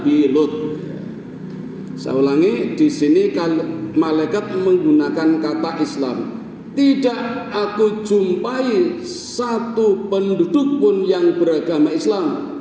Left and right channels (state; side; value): identical; both; correlation 1.00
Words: Lut. Saya ulangi, di sini malaikat menggunakan kata Islam. Tidak aku jumpai satu penduduk pun yang beragama Islam,